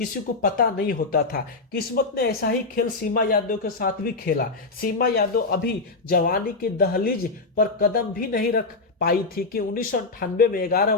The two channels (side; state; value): right; quieter; 3.7 dB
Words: को पता नहीं होता था। किस्मत ने ऐसा ही खेल सीमा यादव के साथ भी खेला। सीमा यादव अभी जवानी की दहलीज पर कदम भी नहीं रख पाई थी कि 1998 में 11